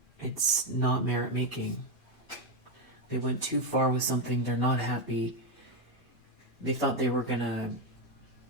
it's not merit making. They went too far with something, they're not happy. They thought they were going to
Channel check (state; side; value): normal; both; correlation 0.07